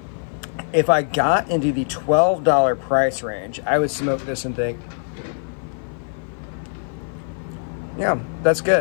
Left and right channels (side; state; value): right; silent; 55 dB below the other